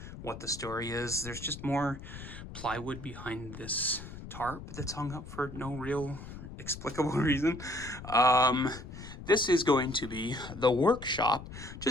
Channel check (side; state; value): left; noise; rumble, 12 dB below the sound